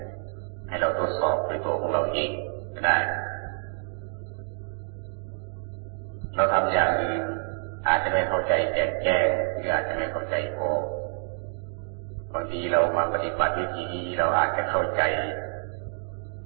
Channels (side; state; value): left; silent; 60 dB below the other